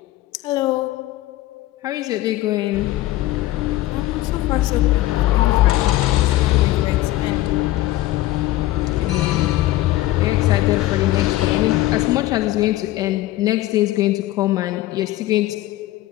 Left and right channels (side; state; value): right; quieter; 16.2 dB